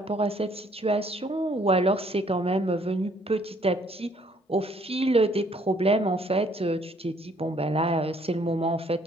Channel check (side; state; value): both; normal; correlation 0.63